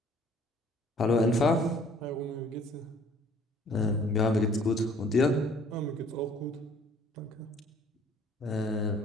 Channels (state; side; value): normal; both; correlation 0.56